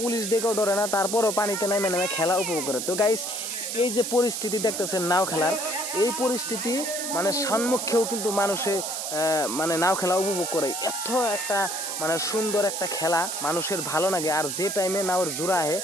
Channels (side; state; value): right; noise; hiss, 4 dB below the sound